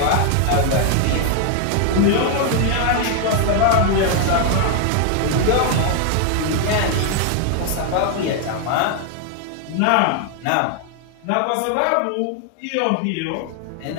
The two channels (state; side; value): different; both; correlation 0.00